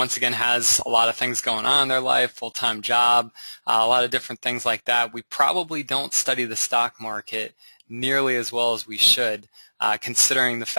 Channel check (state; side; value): inverted; both; correlation -1.00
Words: again has a lot of things going on in their life, full-time job, a lot of different things like that, we probably don't study the stock market nearly as well as we should, considering the